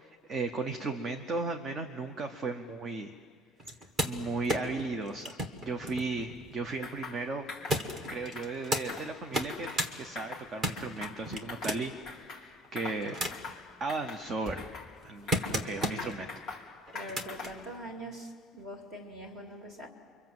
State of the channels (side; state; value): both; normal; correlation 0.55